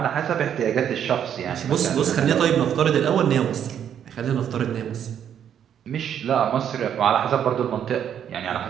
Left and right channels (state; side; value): quieter; left; 9.2 dB